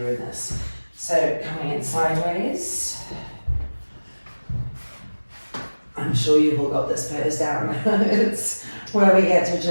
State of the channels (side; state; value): both; inverted; correlation -1.00